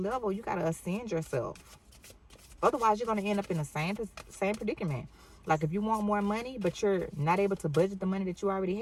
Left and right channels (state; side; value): identical; both; correlation 1.00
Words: you got to ascend yourself. Otherwise, you're going to end up in the same predicament. Like, if you want more money, but you're not able to budget the money that you already